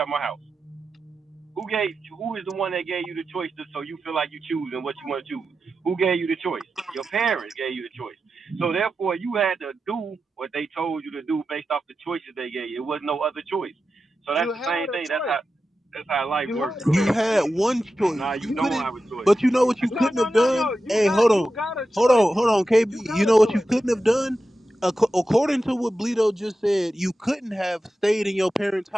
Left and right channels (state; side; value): normal; both; correlation 0.91